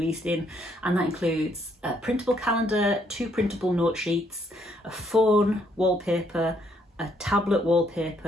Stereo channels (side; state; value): both; normal; correlation 0.71